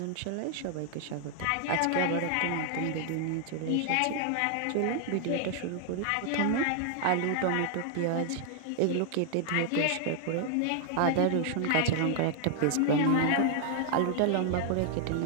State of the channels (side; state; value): both; different; correlation 0.00